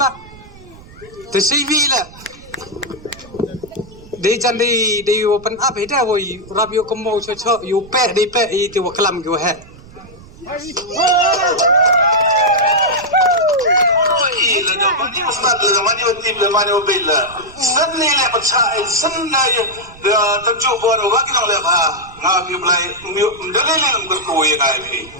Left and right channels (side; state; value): right; noise; rumble, 21 dB below the sound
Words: Te CV la. De jan de open up he da wo rab yo komo cho cho yu pe de pe I te wa klam go he. La do mani ustad la mani watim la mani wabilla. Sanni la patsa sanna tamju bor wa ki le ba nga bi blai ndale le ngor ko ye ngai phi